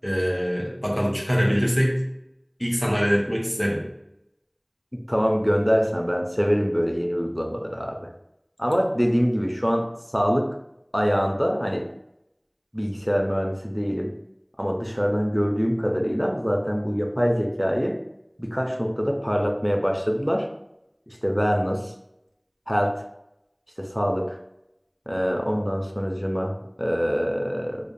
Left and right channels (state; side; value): identical; both; correlation 1.00